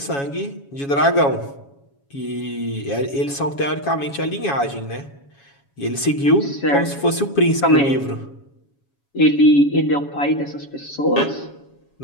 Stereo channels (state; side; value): late; right; 7.2 ms